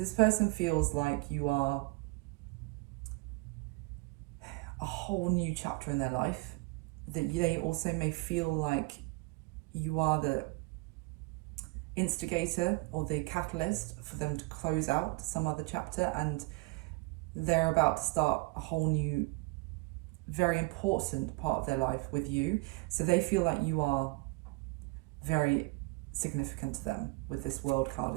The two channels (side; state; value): left; quieter; 26.1 dB